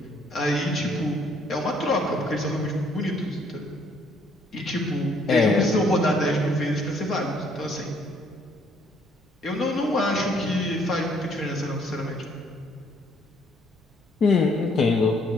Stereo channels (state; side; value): normal; both; correlation 0.65